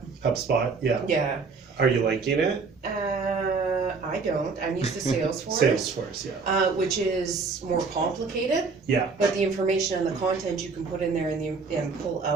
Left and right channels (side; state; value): left; quieter; 4.6 dB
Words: HubSpot. Yeah. Yeah. Are you liking it? I don't. I'm used to Salesforce. Salesforce. Yeah. Which is more complicated. Yeah. But the information and the content you can put in there and pull